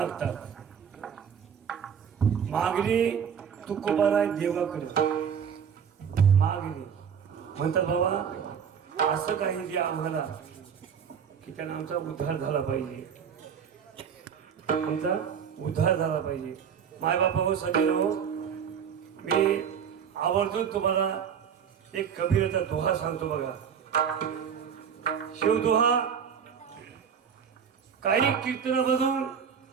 मागणी तुकोबाराय देवाकडे मागणी म्हणतात बाबा असं काही द्या आम्हाला की त्यांना आमचा उद्धार झाला पाहिजे. आमचा उद्धार झाला पाहिजे. मायबाप हो सगळे हो मी आवर्जून तुम्हाला एक कबीरचा दोहा सांगतो बघा. शिवदोहा काही कीर्तनामधून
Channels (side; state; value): left; quieter; 7.5 dB